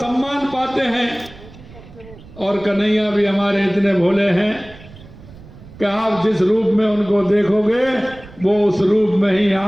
पाते हैं। और कन्हैया भी हमारे इतने भोले हैं कि आप जिस रूप में उनको देखोगे, वो उस रूप में ही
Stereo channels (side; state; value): right; noise; rumble, 20 dB below the sound